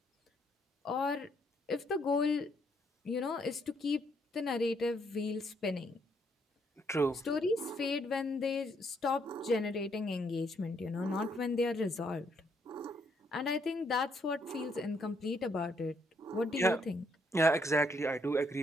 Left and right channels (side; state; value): both; normal; correlation 0.72